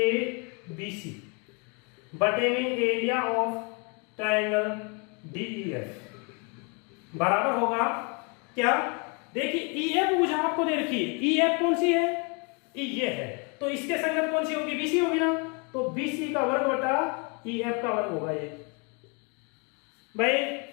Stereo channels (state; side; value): quieter; right; 33.2 dB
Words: B C बटे में एरिया ऑफ ट्राइंगल डीईएफ बराबर होगा क्या, देखिए ईएफ भुजा आपको दे रखी है, ईएफ कौन सी है, ये है, तो इसके संगत कौन सी होगी, बीसी होगी ना, तो बीसी का वर्ग बटा ईएफ का वर्ग होगा ये। भाई